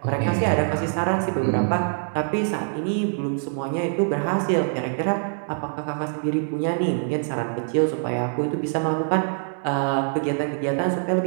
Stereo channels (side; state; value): left; silent; digital silence